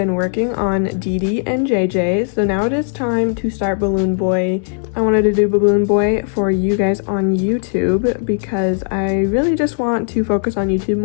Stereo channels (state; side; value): silent; right; digital silence